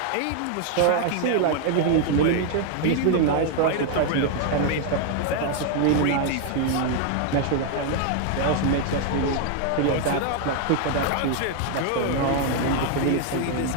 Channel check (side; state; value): both; different; correlation 0.00